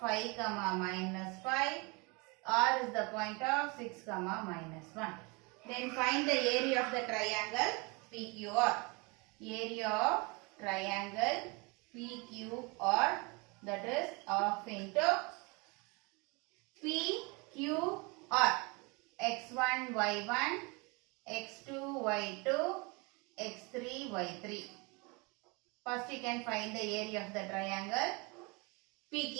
comma minus 5. R is the point of 6 comma minus 1. Then find the area of the triangle PQR. Area of triangle PQR, that is half into PQR. x1, y1, x2, y2, x3, y3. First you can find the area of the triangle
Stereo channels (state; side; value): quieter; left; 28.7 dB